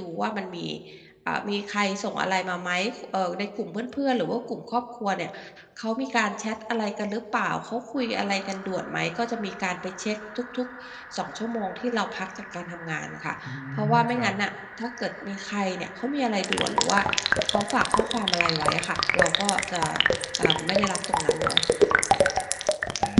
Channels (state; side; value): identical; both; correlation 1.00